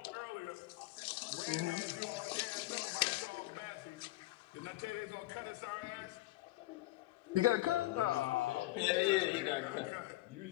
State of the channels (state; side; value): quieter; right; 18.1 dB